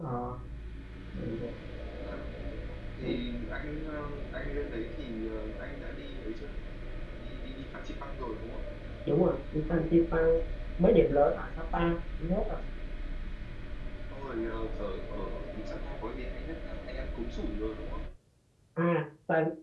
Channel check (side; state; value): both; identical; correlation 1.00